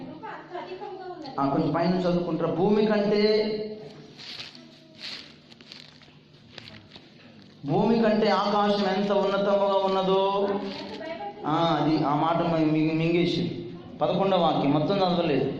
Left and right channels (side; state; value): both; identical; correlation 1.00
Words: కొంచెం పైన చదువుకుంటారా? భూమి కంటే ఆకాశం ఎంత ఉన్నతముగా ఉన్నదో. అది ఆ మాట మింగేసి 11వ వాక్యం మొత్తం చదవలేదు.